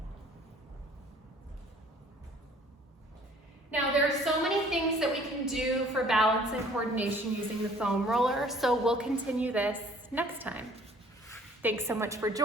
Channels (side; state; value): both; normal; correlation 0.55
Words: Now, there are so many things that we can do for balance and coordination using the foam roller, so we'll continue this next time. Thanks so much for